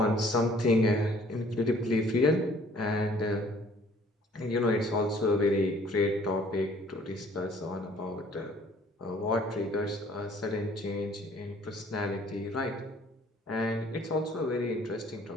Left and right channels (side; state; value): both; normal; correlation 0.57